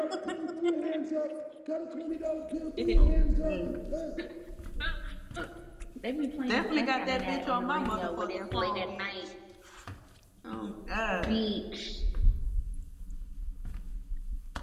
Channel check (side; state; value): both; identical; correlation 1.00